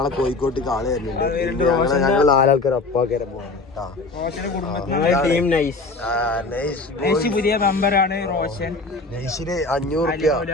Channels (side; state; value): right; quieter; 3.5 dB